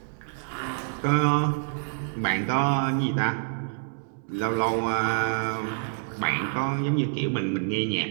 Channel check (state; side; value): silent; left; 60 dB below the other